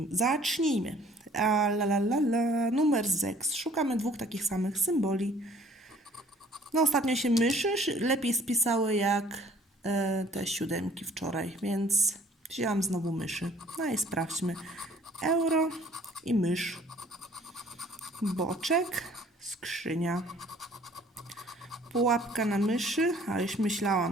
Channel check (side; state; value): both; normal; correlation 0.56